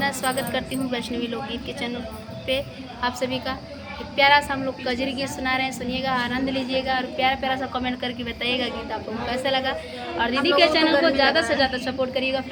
स्वागत करती हूँ वैष्णवी लोकगीत के चैनल पे आप सभी का। एक प्यारा सा हम लोग कजरी गीत सुना रहे हैं, सुनिएगा, आनंद लीजिएगा और प्यारा प्यारा सा कमेंट करके बताइएगा गीत आप लोगों को कैसा लगा। और दीदी के चैनल को ज़्यादा से ज़्यादा सपोर्ट करिएगा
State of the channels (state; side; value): identical; both; correlation 1.00